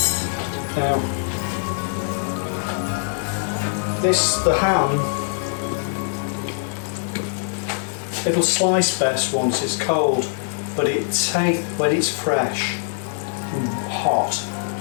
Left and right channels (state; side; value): silent; right; digital silence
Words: Now, the ham, it'll slice best once it's cold, but when it's fresh and hot,